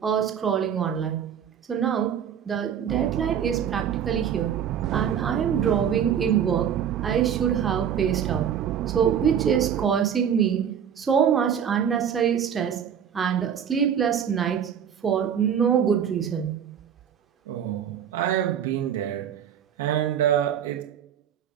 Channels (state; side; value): quieter; left; 8.6 dB